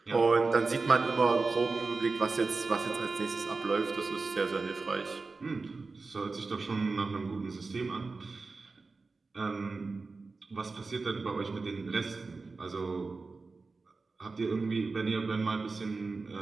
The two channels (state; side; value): quieter; left; 4.0 dB